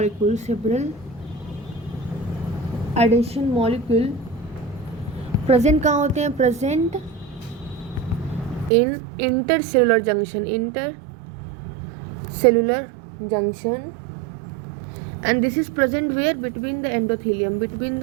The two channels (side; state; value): left; drops out; at 8.7 s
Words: molecule present कहाँ होते हैं? Present in intercellular junction, intercellular junction, and this is present where? Between the endothelium, between